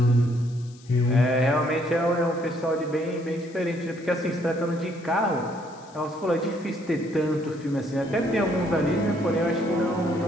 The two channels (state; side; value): noise; left; hiss, 25 dB below the sound